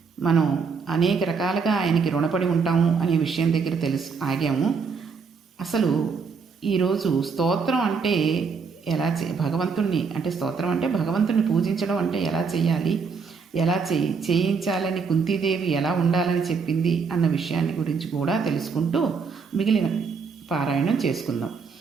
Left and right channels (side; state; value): left; quieter; 5.4 dB